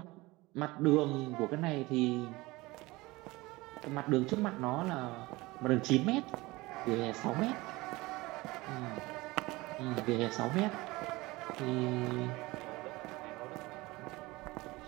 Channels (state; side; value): quieter; left; 21.3 dB